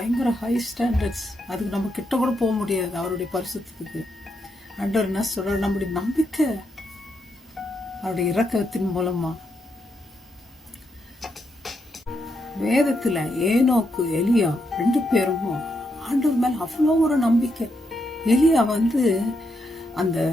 ஹை ஸ்டாண்டர்ட்ஸ். அதுக்கு நம்ம கிட்ட கூட போக முடியாது அவருடைய பரிசுத்தத்துக்கு. ஆண்டவர் என்ன சொல்ற? நம்முடைய நம்பிக்கை அவருடைய இரக்கத்தின் மூலமா. வேதத்துல ஏனோக்கு எலியா 2 பேரும் ஆண்டவர் மேல அவ்வளோ ஒரு நம்பிக்கை. எலியா அந்த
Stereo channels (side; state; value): both; normal; correlation 0.81